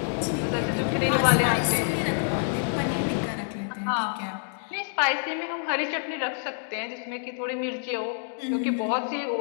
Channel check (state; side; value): silent; right; 60 dB below the other